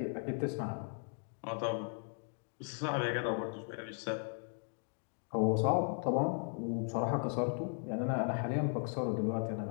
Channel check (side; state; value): right; silent; 53 dB below the other